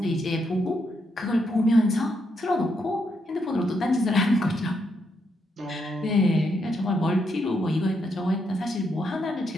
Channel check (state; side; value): normal; both; correlation 0.79